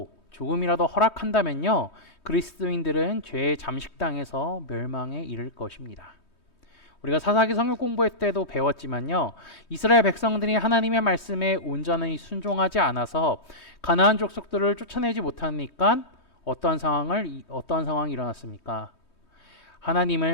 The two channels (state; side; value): late; right; 3.2 ms